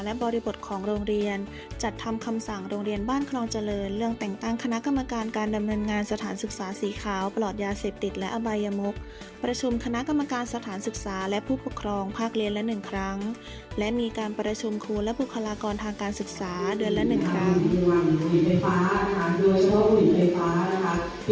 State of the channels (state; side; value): identical; both; correlation 1.00